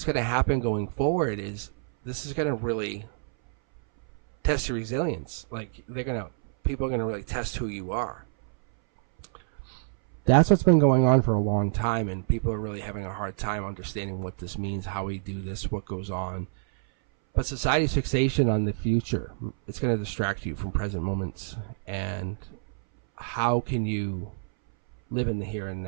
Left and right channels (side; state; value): left; silent; 60 dB below the other